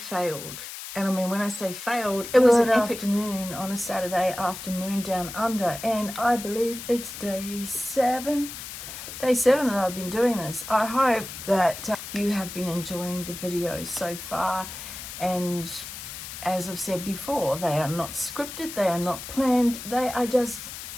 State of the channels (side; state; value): left; noise; hiss, 10 dB below the sound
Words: And I mean, when I say failed, it was an afternoon on a Saturday afternoon down under. And I believe it's day 7 that I've been doing this. I hope that you have been enjoying the videos so far. And as I've said before, they are not scripted, they are not planned, they are just